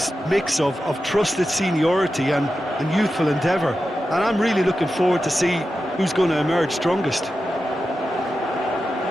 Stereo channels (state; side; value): normal; both; correlation 0.91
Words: mix of trusted seniority and youthful endeavour, and I'm really looking forward to see who's going to emerge strongest.